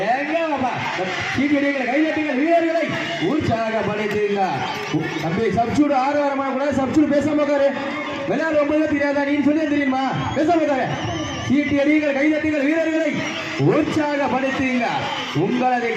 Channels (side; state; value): both; identical; correlation 1.00